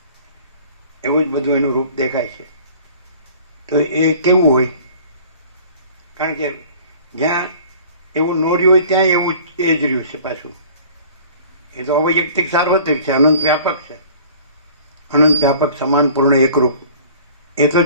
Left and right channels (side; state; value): both; inverted; correlation -0.47